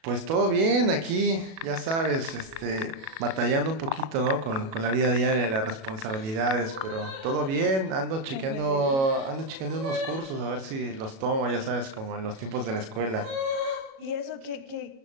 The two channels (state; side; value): late; left; 37 ms